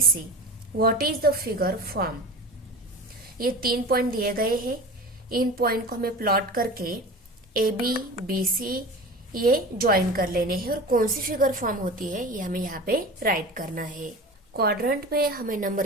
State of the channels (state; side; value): normal; both; correlation 0.33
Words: C, what is the figure form. ये 3 पॉइंट दिए गए हैं। इन पॉइंट को हमें प्लॉट करके ए बी सी ये ज्वाइन कर लेने हैं और कौन सी फिगर फॉर्म होती है ये हमें यहाँ पे राइट करना है। क्वाड्रेंट में हमें